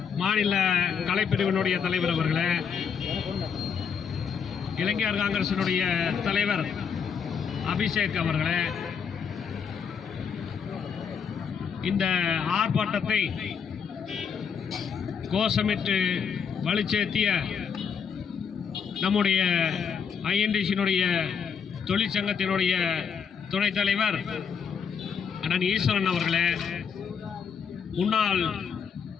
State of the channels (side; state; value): right; quieter; 6.7 dB